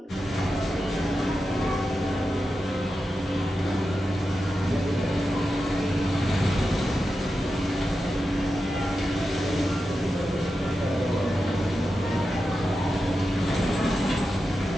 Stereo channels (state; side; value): normal; both; correlation 0.90